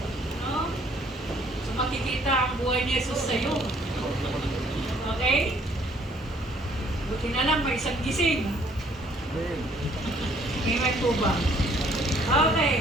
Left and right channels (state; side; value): normal; both; correlation 0.62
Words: No? So makikita ang buhay ni Jesus sa'yo. Okay? Buti na lang, may isang gising. Amen po ba?